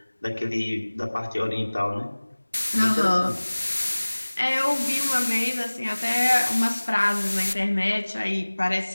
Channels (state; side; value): inverted; both; correlation -1.00